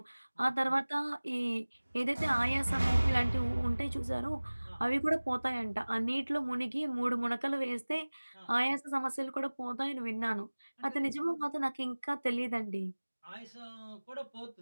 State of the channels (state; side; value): inverted; both; correlation -1.00